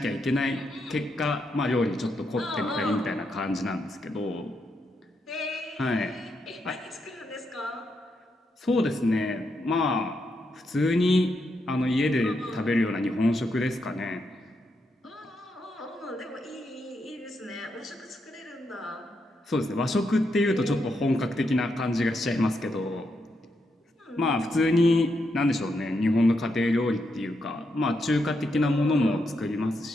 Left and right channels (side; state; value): both; normal; correlation 0.82